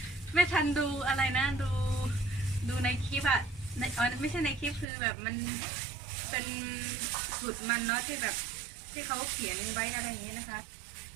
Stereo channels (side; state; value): left; drops out; at 4.9 s